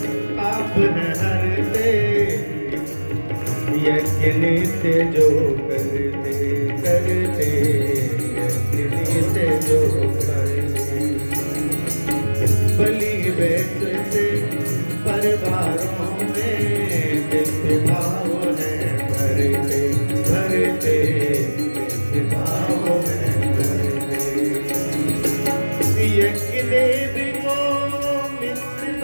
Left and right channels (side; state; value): both; inverted; correlation -1.00